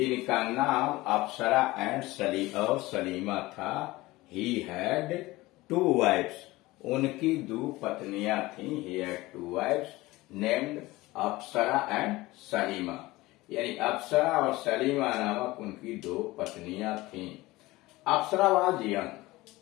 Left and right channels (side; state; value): right; quieter; 19.6 dB